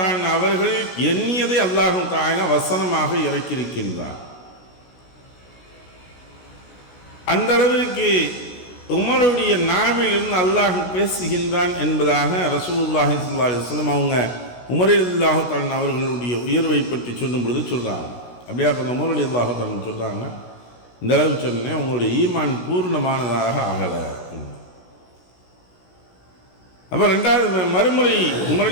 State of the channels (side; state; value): right; late; 16 ms